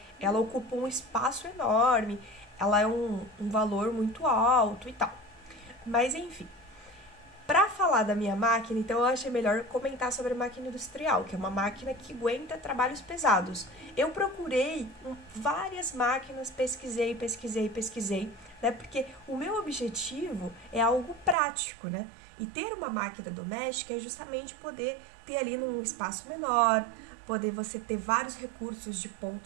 ocupa um espaço enorme, ela é um valor muito alto e tal. Mas enfim, para falar da minha máquina, então eu achei melhor comentar sobre a máquina industrial, que é uma máquina que aguenta trabalhos pesados. Eu procurei várias máquinas, pesquisei, né? Porque o meu objetivo é algo prático, né? E ter uma máquina doméstica é justamente poder ter ali num espaço menor, poder você ter vários recursos de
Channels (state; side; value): drops out; left; at 21.4 s